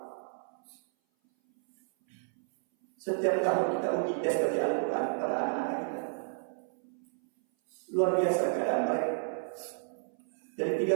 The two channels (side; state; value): left; silent; 57 dB below the other